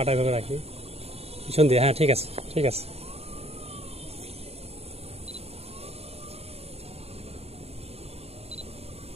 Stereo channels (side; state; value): left; late; 0.30 ms